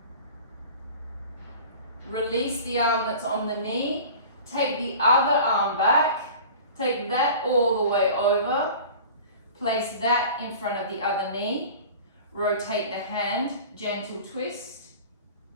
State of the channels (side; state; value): both; inverted; correlation -0.40